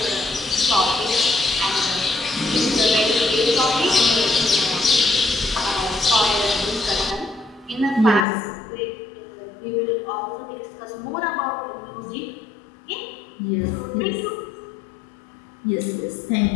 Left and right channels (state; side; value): drops out; right; at 8.2 s